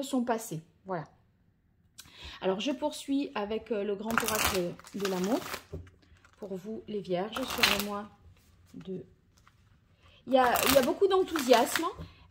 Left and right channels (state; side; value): identical; both; correlation 1.00